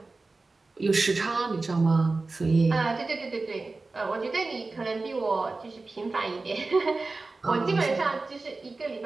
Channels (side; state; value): left; quieter; 3.6 dB